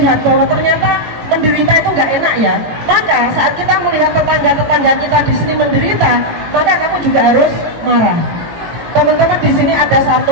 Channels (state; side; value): late; left; 18 ms